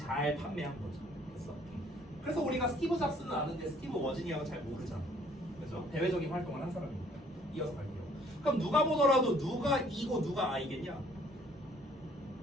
판매한 거죠. 그래서 우리가 스티브 잡스는 아는데 스티브 워즈니악은 잘 모르잖아. 그렇죠? 대외적인 활동을 한 사람이니까. 이어서 갈게요. 그럼 누가 보더라도 누가 E고 누가 I겠냐?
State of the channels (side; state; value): both; normal; correlation 0.60